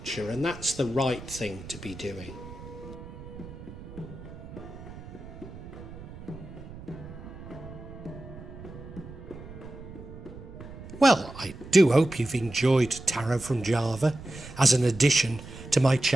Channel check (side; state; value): right; noise; rumble, 14 dB below the sound